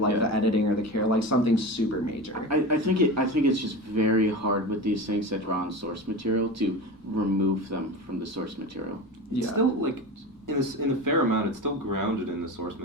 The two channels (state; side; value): normal; both; correlation 0.28